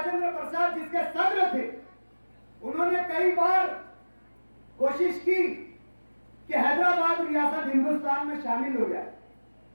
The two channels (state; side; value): inverted; both; correlation -1.00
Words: प्रसाद जिसके सदर थे, उन्होंने कई बार कोशिश की कि हैदराबाद रियासत हिंदुस्तान में शामिल हो जाए,